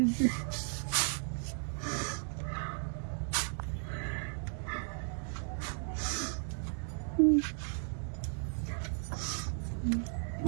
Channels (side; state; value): left; silent; 54 dB below the other